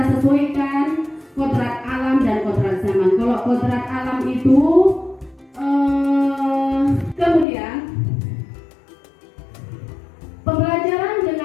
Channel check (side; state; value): right; drops out; at 7.5 s